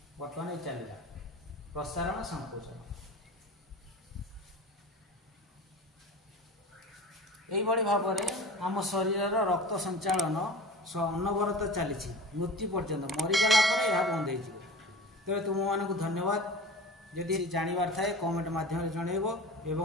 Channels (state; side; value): normal; both; correlation 0.35